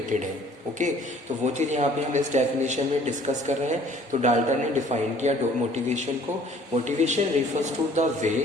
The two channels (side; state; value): both; normal; correlation 0.54